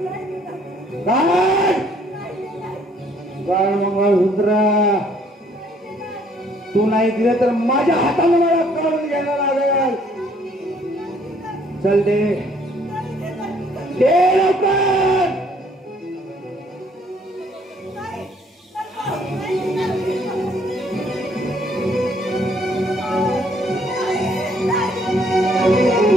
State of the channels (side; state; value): both; normal; correlation 0.63